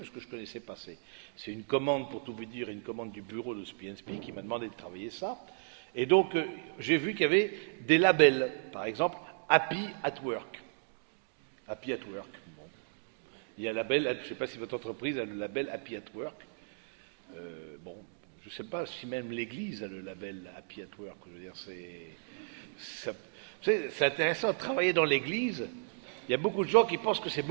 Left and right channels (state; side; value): silent; left; digital silence